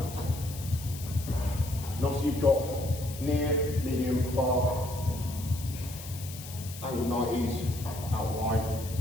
else. And obviously you've got near, medium, far, angle 90s, out wide,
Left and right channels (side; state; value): left; noise; hiss, 13 dB below the sound